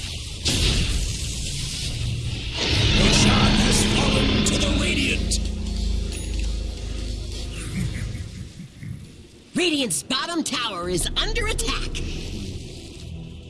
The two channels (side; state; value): both; identical; correlation 1.00